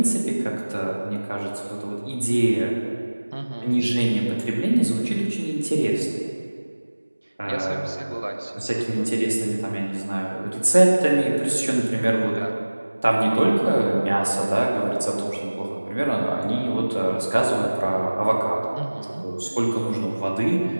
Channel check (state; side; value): inverted; both; correlation -1.00